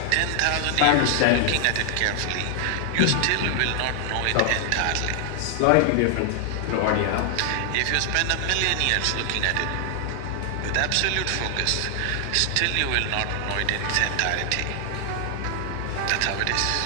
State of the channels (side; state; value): both; different; correlation 0.00